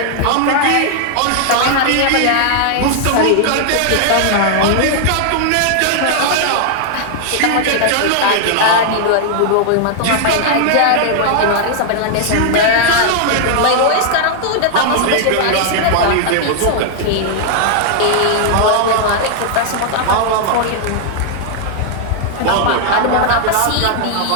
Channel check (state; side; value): different; both; correlation 0.00